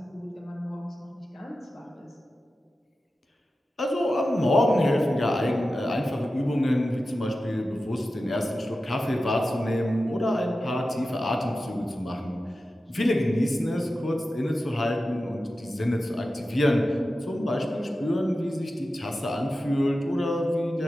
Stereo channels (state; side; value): normal; both; correlation 0.93